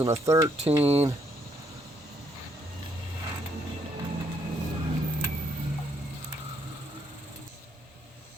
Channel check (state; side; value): normal; both; correlation 0.72